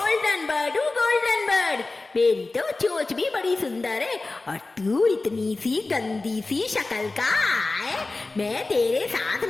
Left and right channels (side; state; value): right; quieter; 3.4 dB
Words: बर्ड हूँ, गोल्डन बर्ड। मेरी तो चोंच भी बड़ी सुंदर है, और तू इतनी सी गंदी सी शक्ल का है, मैं तेरे साथ